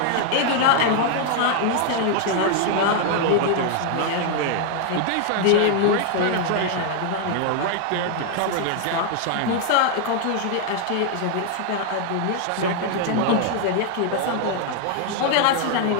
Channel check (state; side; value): different; both; correlation 0.00